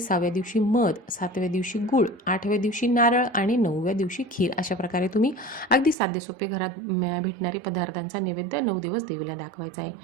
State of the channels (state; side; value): drops out; left; at 6.0 s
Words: दिवशी मध, 7व्या दिवशी गूळ, 8व्या दिवशी नारळ आणि 9व्या दिवशी खीर. अशा प्रकारे तुम्ही अगदी साधे सोपे घरात भेटणारे पदार्थांचा नैवेद्य 9 दिवस देवीला दाखवायचा आहे.